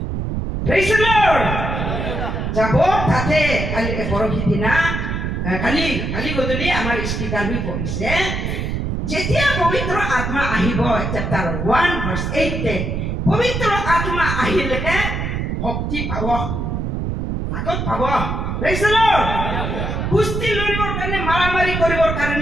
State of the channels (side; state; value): right; noise; rumble, 2 dB below the sound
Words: praise the lord যাব তাতে কালি পৰহি দিনা কালি গধূলি আমাৰ স্পিকাৰ হৈ পৰিছে যেতিয়া পবিত্ৰ আত্মা আহিব চেপ্টাৰ 1 ভাৰ্চ 8 পবিত্ৰ আত্মা আহিলে শক্তি পাব তাকত পাব প্ৰেজ দ্য লৰ্ড কুস্তি লৰিবৰ কাৰণে মাৰামাৰি কৰিবৰ